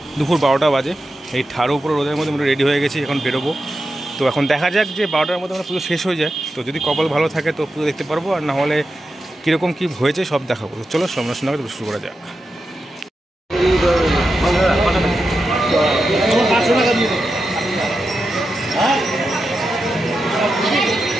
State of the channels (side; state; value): both; normal; correlation 0.89